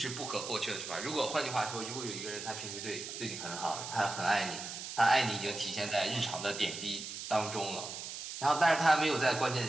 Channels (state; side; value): noise; right; hiss, 8 dB below the sound